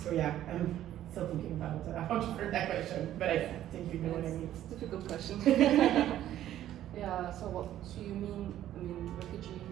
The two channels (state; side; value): quieter; left; 12.4 dB